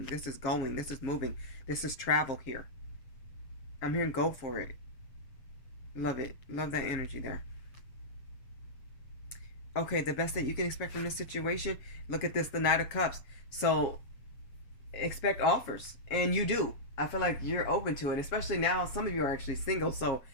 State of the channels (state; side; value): late; right; 7.4 ms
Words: This is going. This is moving. This is travel here. I'm hearing go for it. Love it. Love that energy there. Okay, the best that you can expect from this situation. Look at this, the Knight of Cups. So expect offers, and you do. I feel like you're open to it, especially now. Some of you are actually single, so